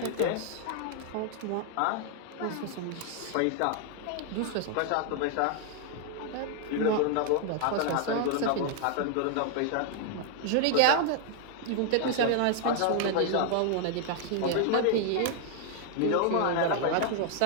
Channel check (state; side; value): different; both; correlation 0.00